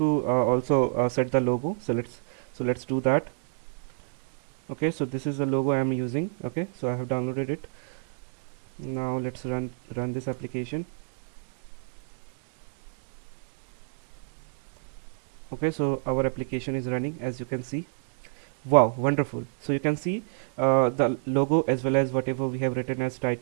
also set the logo, so let's do that. Okay, so this is the logo I am using. Okay, so I have downloaded it. Now let's run this application. Okay, so our application is running, as you can see. Wow, wonderful. So you can see the logo as well as whatever we have written as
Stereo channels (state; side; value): silent; left; digital silence